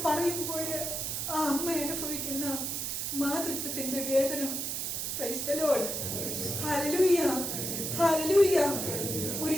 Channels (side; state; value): right; noise; hiss, 2 dB below the sound